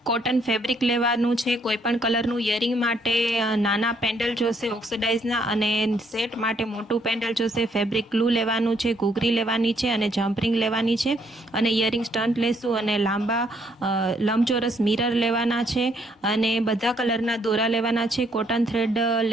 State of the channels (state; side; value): normal; both; correlation 0.69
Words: કોટન ફેબ્રિક લેવાનું છે। કોઈપણ કલરનું ઇયરિંગ માટે નાના પેન્ડલ જોશે ઓક્સિડાઇઝના, અને સેટ માટે મોટું પેન્ડલ જોશે। ફેબ્રિક ગ્લુ લેવાનું છે, ઘૂઘરી લેવાની છે અને જમ્પરિંગ લેવાની છે, અને ઇયરિંગ સ્ટન્ટ લેશું, અને લાંબા લંબચોરસ મિરર લેવાના છે, અને બધા કલરના દોરા લેવાના છે, કોટન થ્રેડ